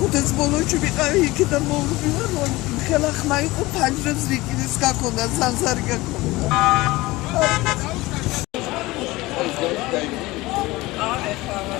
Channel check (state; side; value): quieter; right; 20.2 dB